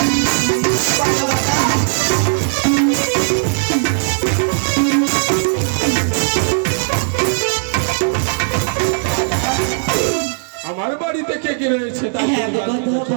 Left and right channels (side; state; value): left; silent; digital silence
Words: বলো দাদা। আমার বাড়িতে কে কে রয়েছে তা হ্যাঁ গো কথা,